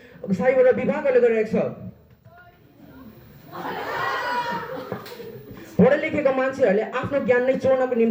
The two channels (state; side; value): identical; both; correlation 1.00